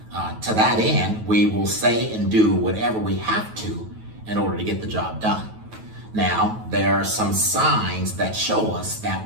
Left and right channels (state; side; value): late; left; 9.3 ms